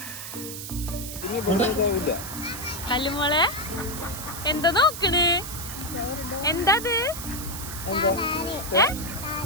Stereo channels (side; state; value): right; noise; hiss, 8 dB below the sound